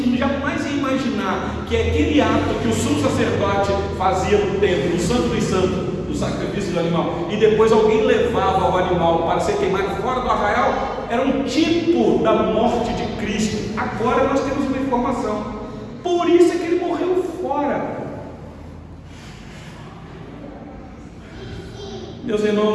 jamais ia imaginar que aquele ato que o sumo sacerdote fazia no templo, no Santo dos Santos, do sacrifício do animal, e depois alguém levava o animal para ser queimado fora do arraial, era um tipo da morte de Cristo. Agora nós temos uma informação. Por isso é que ele morreu fora. Meus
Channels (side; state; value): both; identical; correlation 1.00